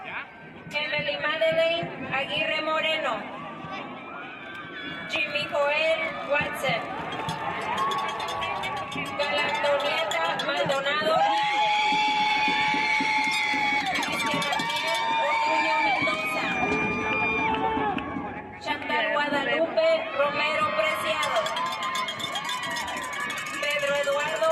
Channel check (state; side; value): identical; both; correlation 1.00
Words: Emily Madeleine Aguirre Moreno, Jimmy Joel Watson, Galantonieta Maldonado, Cristian Ariel Ortuño Mendoza, Chantal Guadalupe Romero Preciado, Pedro Eduardo